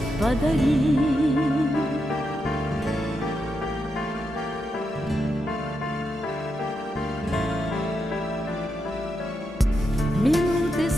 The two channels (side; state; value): both; normal; correlation 0.84